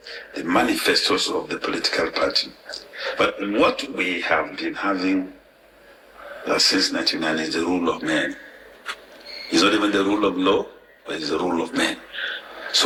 the manifestos of the political party. But what we have been having since 1999 is the rule of men. It's not even the rule of law, but it's the rule of men.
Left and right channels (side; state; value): both; identical; correlation 1.00